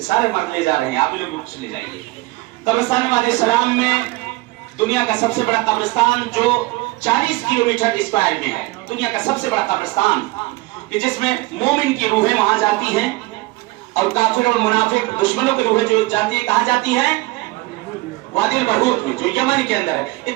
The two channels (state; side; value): quieter; left; 21.4 dB